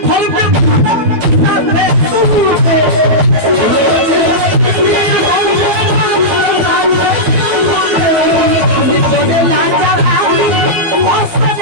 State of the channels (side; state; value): left; late; 12 ms